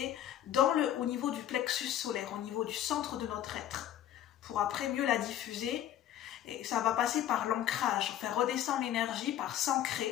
au niveau du plexus solaire, au niveau du centre de notre être, pour après mieux la diffuser. Et ça va passer par l'ancrage, faire redescendre l'énergie par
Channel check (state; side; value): quieter; right; 11.5 dB